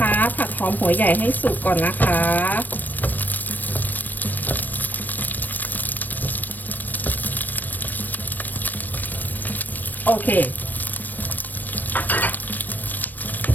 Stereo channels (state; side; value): late; right; 0.088 ms